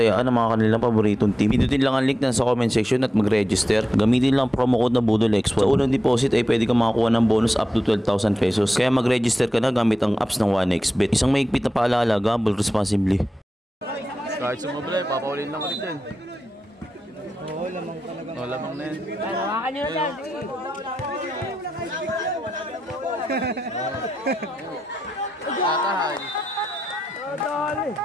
ang mga kanilang paboritong team, pindutin lang ang link na sa comment section at mag-register. Gamitin lang promo code na BUDOLXPOD. Sa unang deposit ay pwede kang makakuha ng bonus up to 12,000 pesos. Kaya mag-register ka na gamit ang apps ng 1xBet. Isang mahigpit na paalala, gamble responsibly. Kahit sumabla, papaulin lang ulit yan. Oo, lamang talaga. O, lamang na yan. Ay, hawakan nyo na dyan. Kakahay.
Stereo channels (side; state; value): both; normal; correlation 0.90